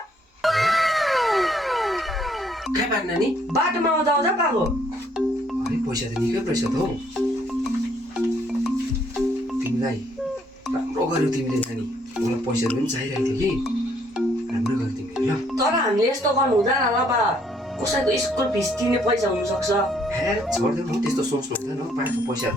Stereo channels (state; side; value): normal; both; correlation 0.67